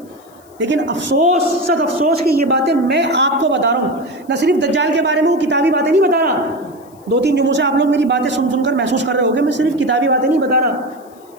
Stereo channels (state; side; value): noise; left; hiss, 30 dB below the sound